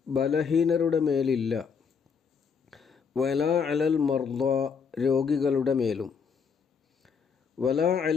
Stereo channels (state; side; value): quieter; right; 6.1 dB